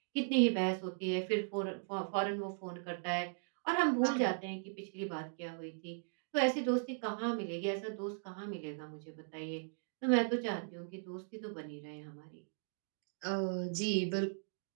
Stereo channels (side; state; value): left; silent; digital silence